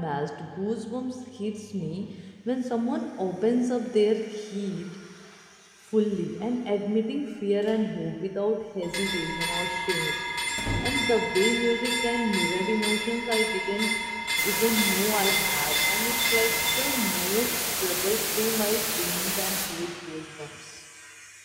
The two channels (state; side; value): identical; both; correlation 1.00